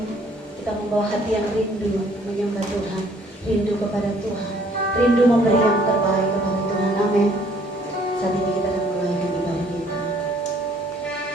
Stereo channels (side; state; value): both; normal; correlation 0.61